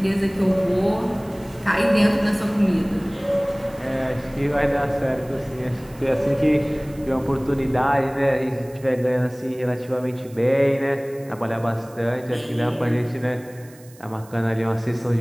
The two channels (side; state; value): right; noise; hiss, 24 dB below the sound